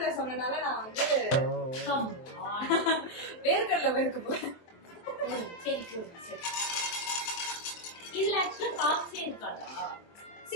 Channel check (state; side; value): late; right; 23 ms